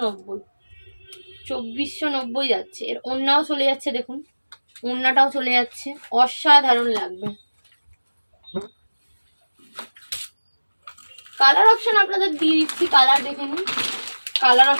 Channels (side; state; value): both; inverted; correlation -1.00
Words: 2490 যাচ্ছে। এর ওড়নাও চলে যাচ্ছে, দেখুন ওড়নাটাও চলে যাচ্ছে, অসাধারণ লাগবে। কালার অপশন আপনাদের দিয়ে দিচ্ছি, কালার দেখে নিন। কালার